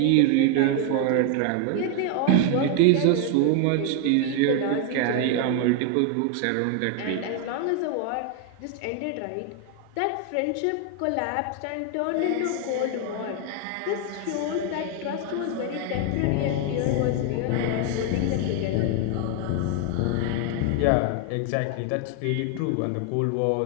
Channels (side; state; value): both; different; correlation 0.00